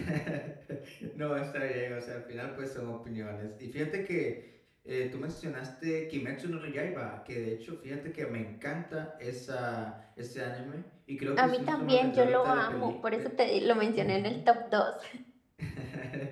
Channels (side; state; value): both; identical; correlation 1.00